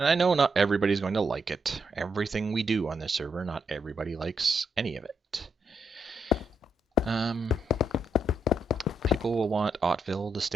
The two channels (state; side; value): normal; both; correlation 0.80